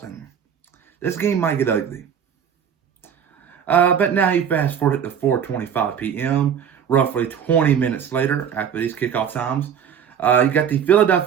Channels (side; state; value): left; quieter; 8.1 dB